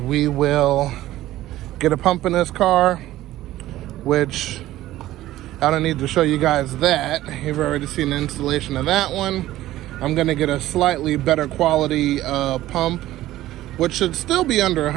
we will get a pump in this car, which I don't need to show you guys that. You've already seen the installation of that one. I'm gonna get a slightly better quality pump, which should still be under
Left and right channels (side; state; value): left; quieter; 15.1 dB